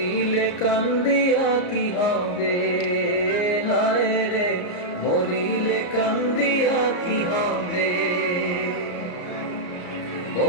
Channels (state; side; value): late; right; 34 ms